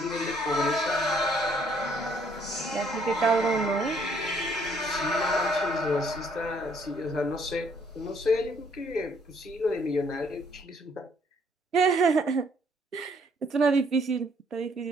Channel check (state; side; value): normal; both; correlation 0.65